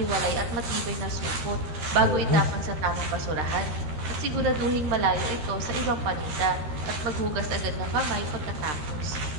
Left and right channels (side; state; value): left; late; 13 ms